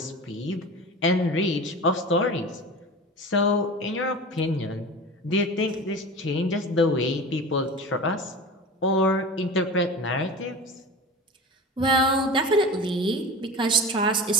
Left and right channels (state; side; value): normal; both; correlation 0.33